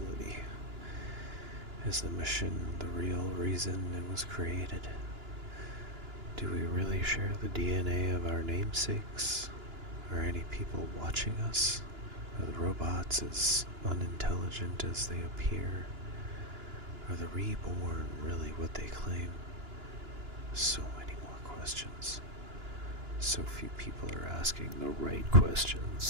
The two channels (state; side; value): late; left; 2.9 ms